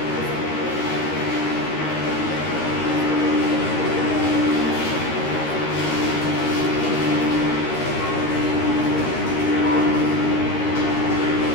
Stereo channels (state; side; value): late; right; 13 ms